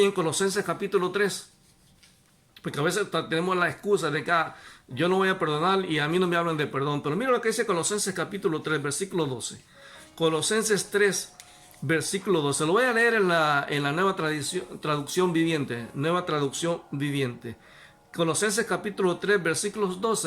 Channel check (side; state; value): both; identical; correlation 1.00